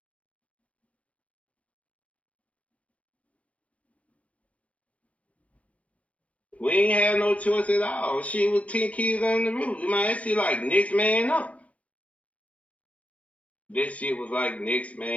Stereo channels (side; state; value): right; late; 0.065 ms